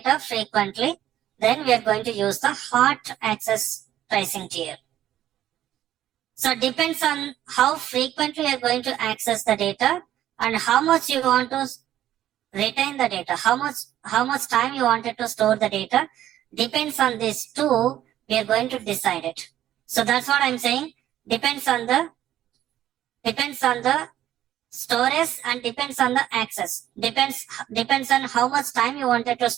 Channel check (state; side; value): quieter; left; 12.4 dB